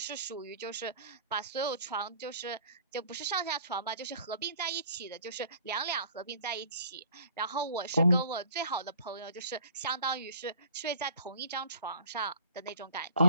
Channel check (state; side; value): inverted; both; correlation -0.50